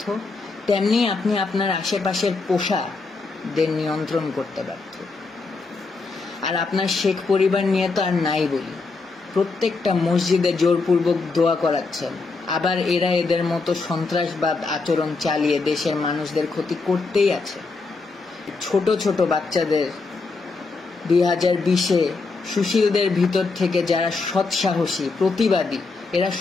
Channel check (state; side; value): quieter; right; 4.0 dB